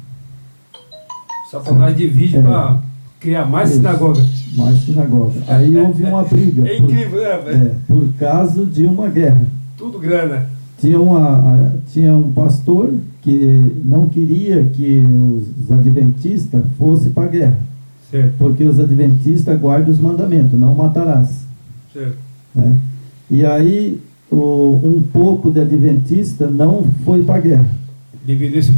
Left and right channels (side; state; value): both; inverted; correlation -1.00